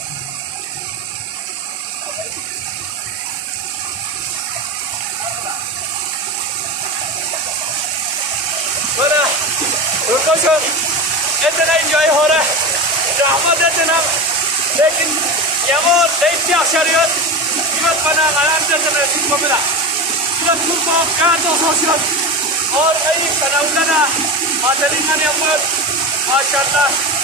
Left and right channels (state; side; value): normal; both; correlation 0.23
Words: इतना इंजॉय हो रहा है रहमत इतना, लेकिन यमो लेट्या शरीयत इवत बना आराम से चले इसको मिला इवत को का तो सोशल और कई कनाउना मातली का नियमत माशाल्लाह